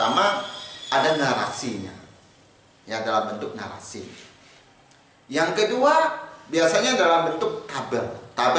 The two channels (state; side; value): identical; both; correlation 1.00